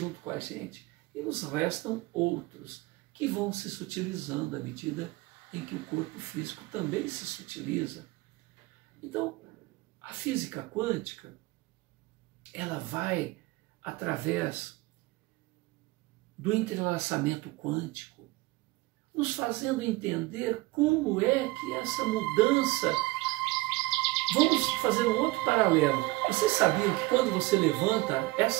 com a gente. E nos restam outros que vão se sutilizando à medida em que o corpo físico também se sutiliza. Então, a física quântica, ela vai através do entrelaçamento quântico, nos fazendo entender como é que essa mudança... Vamos fazer um outro paralelo. Vocês sabiam que quando você levanta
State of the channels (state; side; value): quieter; left; 21.0 dB